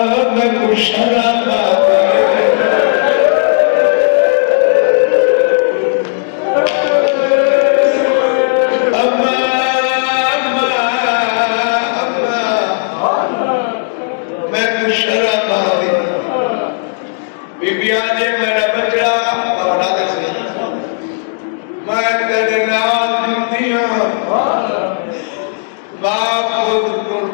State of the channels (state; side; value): silent; right; digital silence